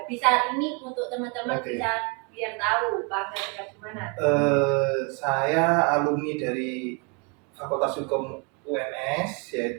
Bisa ini untuk teman-teman bisa biar tahu Pak Angga tinggal di mana. Saya alumni dari Fakultas Hukum UNS,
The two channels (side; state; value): left; quieter; 34.2 dB